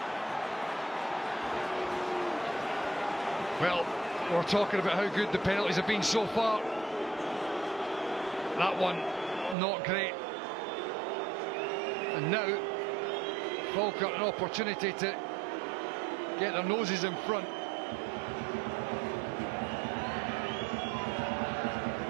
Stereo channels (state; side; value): drops out; left; at 9.6 s